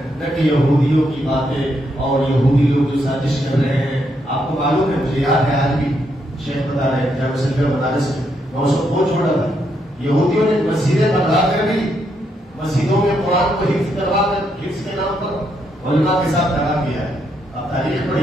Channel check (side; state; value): both; normal; correlation 0.78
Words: نہ کہ یہودیوں کی باتیں اور یہودی لوگ جو سازش کر رہے ہیں. آپ کو معلوم ہے، مجھے یاد ہے آج بھی شیخ بتا رہے ہیں جامعہ سلفیہ مدارس میں، میں اس کو بہت چھوڑا تھا، یہودیوں نے مسجدیں بنا کر بھی مسجدوں میں قرآن کو حفظ کروا کر حفظ کے نام پر علماء کے ساتھ دھڑا کیا ہے. آپ تاریخ